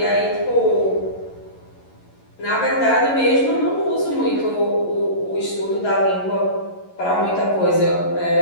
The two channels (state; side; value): late; right; 11 ms